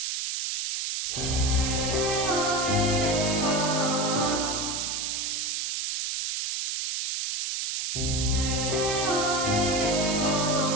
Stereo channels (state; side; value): noise; right; hiss, 1 dB below the sound